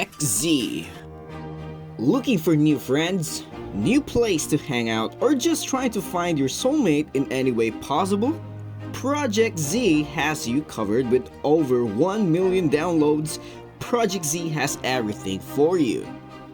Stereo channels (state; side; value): identical; both; correlation 1.00